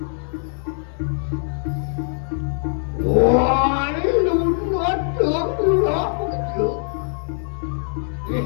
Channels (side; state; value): right; silent; 64 dB below the other